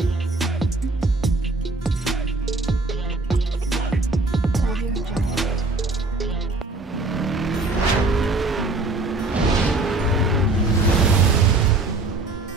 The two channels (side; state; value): left; quieter; 3.2 dB